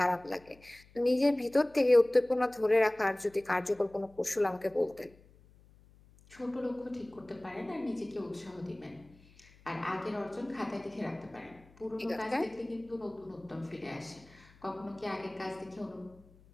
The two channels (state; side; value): noise; left; hum, 26 dB below the sound